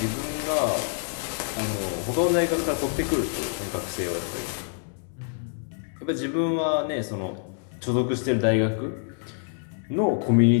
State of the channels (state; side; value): silent; right; 61 dB below the other